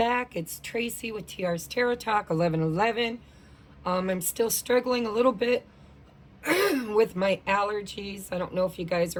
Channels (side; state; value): both; identical; correlation 1.00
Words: It's Tracy with TR's Tarot Talk 1111. I'm still struggling a little bit with my allergies. I don't know if you guys